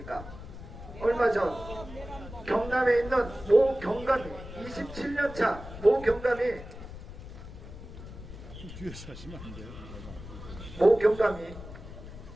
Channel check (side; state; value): left; noise; rumble, 13 dB below the sound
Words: 얼마 전 경남에 있는 모 경감이 27년차 모 경감이 뒤에서 하시면 안 돼요. 모 경감이